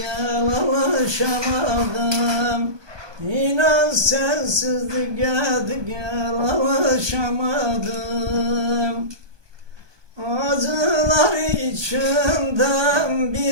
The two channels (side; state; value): left; late; 1.2 ms